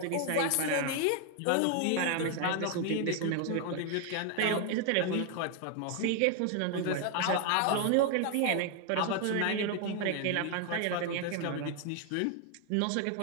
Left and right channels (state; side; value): different; both; correlation 0.00